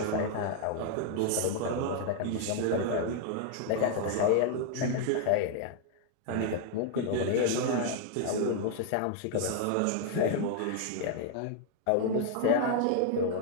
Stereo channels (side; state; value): both; different; correlation 0.00